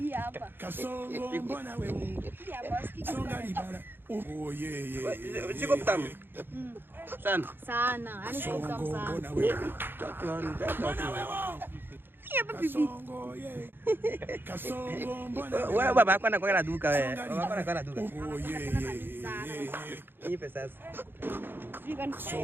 hapa. Kasongo mbona wewe? Hii hapa sikiki. Songa liba. Siko mtamu. Sana. Sana. Yaani siko mtamu sana. Mbona wewe? Mbona wewe? Hapa pipi. Kasongo mbona wewe? Wewe baba yako anakuwa na duka wewe. Baba yako anakuwa na duka. Nipe sasa.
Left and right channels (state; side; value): late; left; 0.10 ms